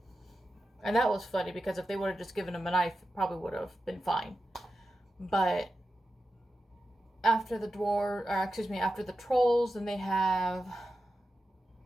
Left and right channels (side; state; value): both; normal; correlation 0.91